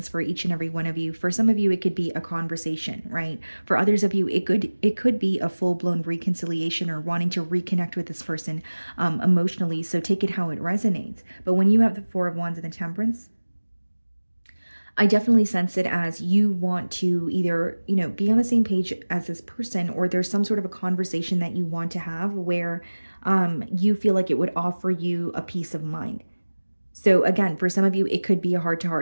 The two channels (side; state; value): both; inverted; correlation -1.00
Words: for each and every one of you. For some of you, it could be a conversation, right? For others of you, it could be a full-blown reconciliation or wanting to reconnect with this person emotionally. So take it how it resonates. But when you have the Four of Wands and the Temperance, I definitely sense it as you want to either, be on the same page as this person, or there's some sort of a conversation that you want to have where you feel like it would offer you a peace of mind. So again, for some of you, it could be a